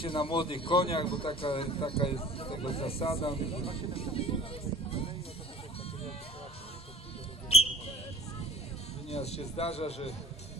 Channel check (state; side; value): normal; both; correlation 0.48